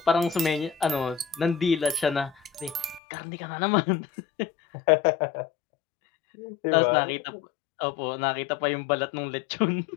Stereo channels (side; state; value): right; drops out; at 3.0 s